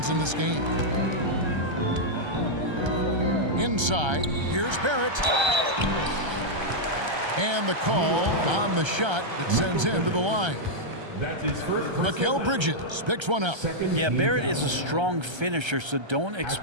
in this game. Inside, here's Barrett. And the call on the shot that sends him to the line. That's his first. Mikal Bridges picks one up. Yeah, Barrett is a strong finisher, so don't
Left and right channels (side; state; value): left; late; 1.3 ms